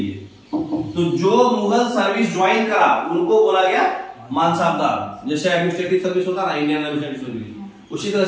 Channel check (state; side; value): identical; both; correlation 1.00